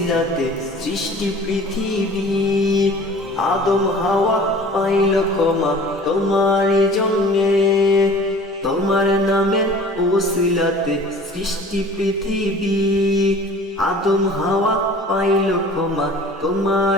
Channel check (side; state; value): both; normal; correlation 0.46